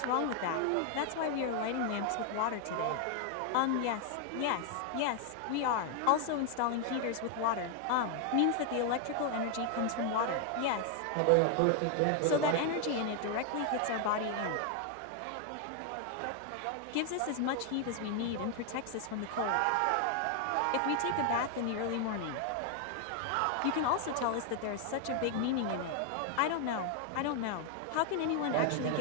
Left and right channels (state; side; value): different; both; correlation 0.00